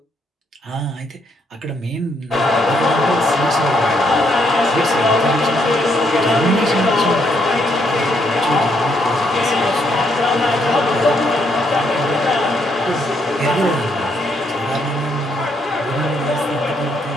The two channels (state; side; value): normal; both; correlation 0.73